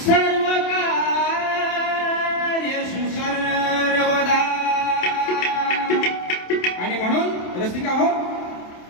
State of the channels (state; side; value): late; right; 27 ms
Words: सर्वकार्येषु सर्वदा. आणि म्हणून रसिका हो,